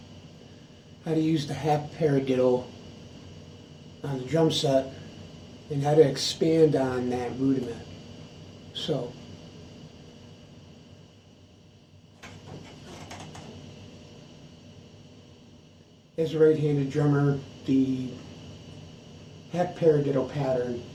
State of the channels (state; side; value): identical; both; correlation 1.00